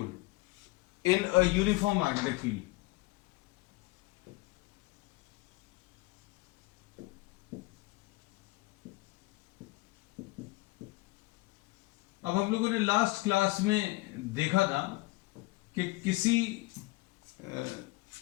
in a uniform magnetic field. अब हम लोगों ने लास्ट क्लास में देखा था कि किसी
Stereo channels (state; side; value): quieter; right; 21.8 dB